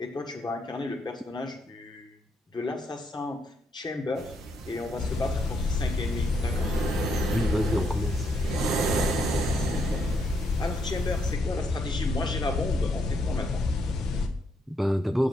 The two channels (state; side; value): normal; both; correlation 0.75